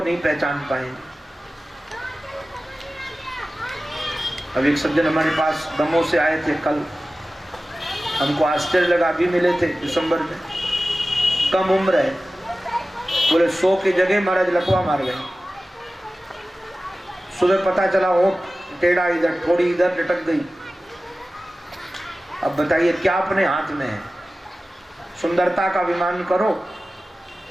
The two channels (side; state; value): both; normal; correlation 0.96